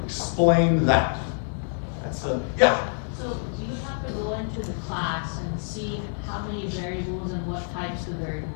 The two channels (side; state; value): right; silent; 61 dB below the other